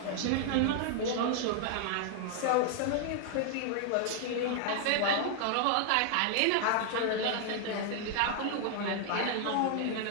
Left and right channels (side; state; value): both; different; correlation 0.00